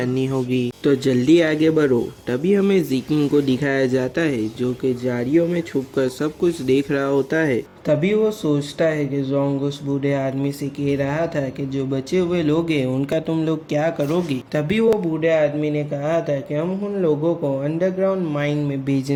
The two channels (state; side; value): identical; both; correlation 1.00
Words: होगी, तो जल्दी आगे बढ़ो। तभी हमें ज़िकिंग को दिखाया जाता है जो कि झाड़ियों में छुपकर सब कुछ देख रहा होता है। तभी वो सोचता है कि जोंग उस बूढ़े आदमी से कह रहा था कि जो बचे हुए लोग हैं उनका तुम लोग क्या करोगे। तभी वो बूढ़े आदमी ने कहा था कि हम उन लोगों को अंडरग्राउंड माइन में